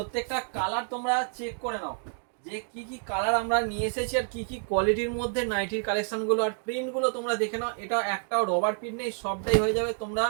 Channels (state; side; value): silent; left; 58 dB below the other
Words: কালার তোমরা চেক করে নাও যে কি কি কালার আমরা নিয়ে এসেছি আর কি কি কোয়ালিটির মধ্যে নাইটির কালেকশনগুলো আর প্রিন্টগুলো তোমরা দেখে নাও। এটা একটাও রবার প্রিন্ট নেই, সবটাই হয়ে যাবে। তোমরা